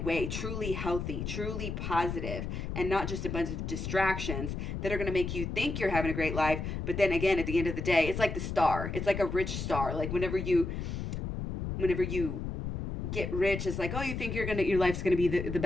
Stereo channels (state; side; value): noise; left; rumble, 4 dB below the sound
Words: way, truly healthy, truly positive, and not just a bunch of distractions that are going to make you think you're having a great life. But then again, at the end of the day, it's like the star. It's like a rich star. Like whenever you get rich, it's like, you think your life's going to be the